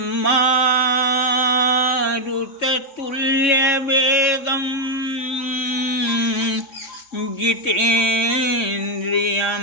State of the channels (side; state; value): right; late; 3.5 ms